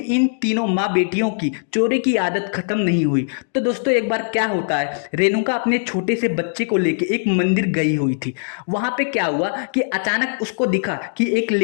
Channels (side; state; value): right; silent; digital silence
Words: इन तीनों माँ बेटियों की चोरी की आदत खत्म नहीं हुई। तो दोस्तों एक बार क्या होता है, रेणुका अपने छोटे से बच्चे को लेके एक मंदिर गई हुई थी। वहां पे क्या हुआ कि अचानक उसको दिखा कि एक